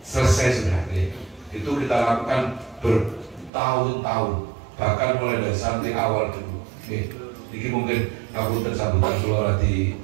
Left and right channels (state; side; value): drops out; left; at 3.5 s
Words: Selesai sudah, ya. Itu kita lakukan bertahun-tahun, bahkan mulai dari santri awal dulu, ya. Ini mungkin ngapunten sambutan keluar di